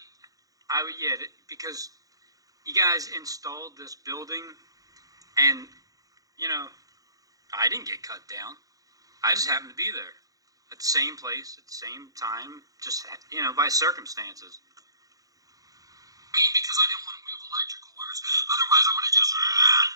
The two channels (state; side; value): late; left; 0.17 ms